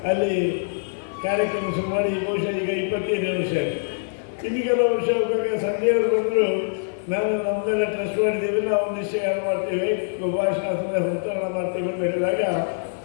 ಅಲ್ಲಿ ಕಾರ್ಯಕ್ರಮ ಶುರು ಮಾಡಿ ಬಹುಶಃ ಈಗ 25ನೇ ವರ್ಷ ಆಗಿದೆ. ಇನ್ನು ಕೆಲವು ವರ್ಷ ಹೋಗುವಾಗ ಸಂಜೆಯವರು ಬಂದರು, ನಾನು ನಮ್ಮದೆಲ್ಲ ಟ್ರಸ್ಟ್ ಮಾಡಿದ್ದೇವೆ, ನಾವು ಒಂದು ನಿಶ್ಚಯ ಮಾಡ್ತೇವೆ, ಭಾಷಣ ಸಂತೋಷ ಮಾಡ್ತೇವೆ ಅಂತ ಹೇಳಿದಾಗ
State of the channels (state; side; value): silent; right; 57 dB below the other